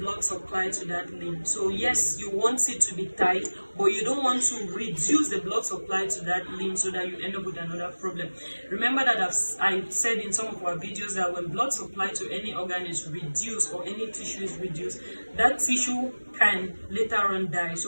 blood supply to that limb. So yes, you want it to be tight, but you don't want to reduce the blood supply to that limb so that you end up with another problem. Remember that I've said in some of our videos that when blood supply to any organ is reduced or any tissue is reduced, that tissue can later on die.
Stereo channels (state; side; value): inverted; both; correlation -1.00